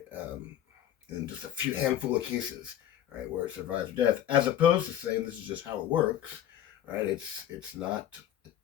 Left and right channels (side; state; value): right; quieter; 11.1 dB